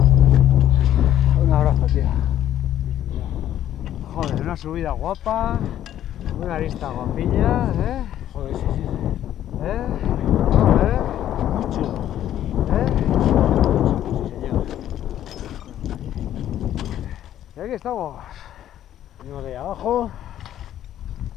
Un abrazo, tío. Joder, una subida guapa, una lista guapilla, ¿eh? Joder, sí, sí, sí. ¿Eh? Muy chulo. ¿Eh? Sí, señor. Y aquí estamos. Venimos de ahí abajo.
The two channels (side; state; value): right; quieter; 11.6 dB